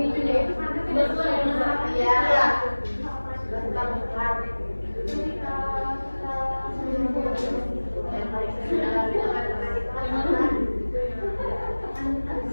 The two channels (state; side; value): inverted; both; correlation -1.00